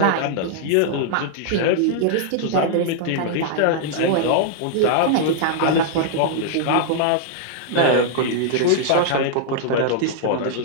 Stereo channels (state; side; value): different; both; correlation -0.01